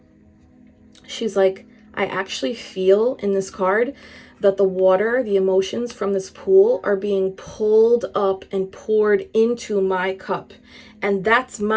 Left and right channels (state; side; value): identical; both; correlation 1.00